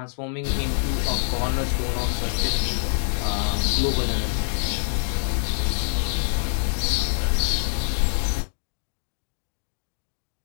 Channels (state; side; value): silent; right; digital silence